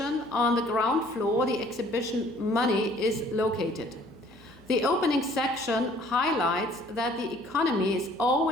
on the ground floor, the exhibition Money, is located. The opening section highlights that the economy is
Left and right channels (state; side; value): noise; left; hum, 28 dB below the sound